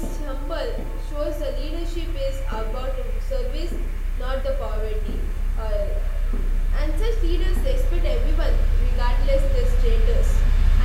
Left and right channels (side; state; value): both; identical; correlation 1.00